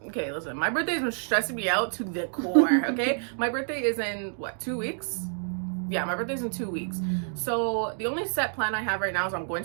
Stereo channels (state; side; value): silent; left; digital silence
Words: Okay, listen, my birthday's been stressing me out to the core, okay? My birthday is in, 2 weeks? Yeah, my birthday's in 2 weeks. So the only set plan I have right now is I'm going